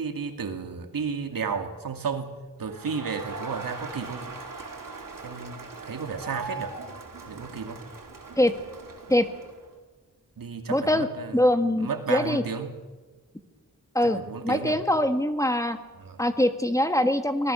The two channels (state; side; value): normal; both; correlation 0.63